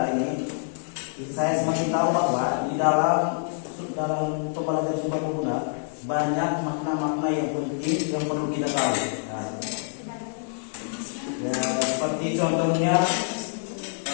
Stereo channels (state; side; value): silent; right; 61 dB below the other